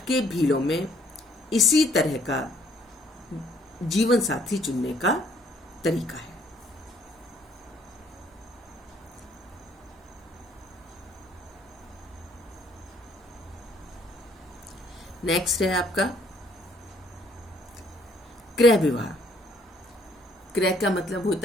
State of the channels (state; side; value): normal; both; correlation 0.64